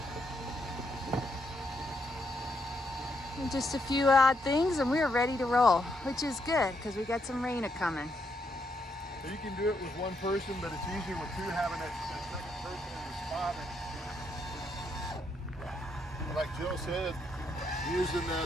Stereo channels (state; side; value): normal; both; correlation 0.77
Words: And just a few odd things and we're ready to roll, which is good because we got some rain a-coming. So you can do it with one person, but it's easier with two, having that second person in the spot. And like Jill said, using